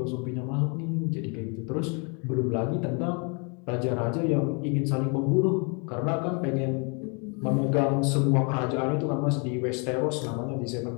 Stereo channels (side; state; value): right; quieter; 35.3 dB